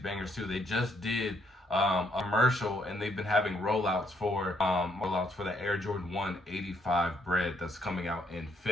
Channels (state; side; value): normal; both; correlation 0.71